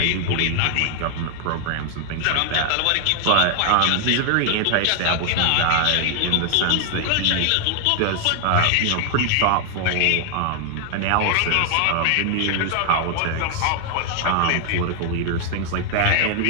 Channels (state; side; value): different; both; correlation 0.00